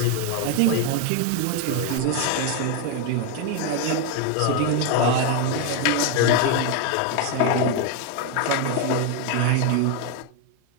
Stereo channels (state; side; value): different; both; correlation 0.01